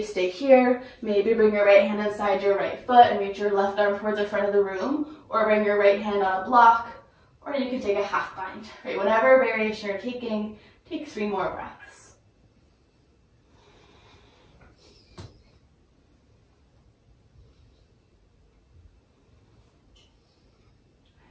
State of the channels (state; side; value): identical; both; correlation 1.00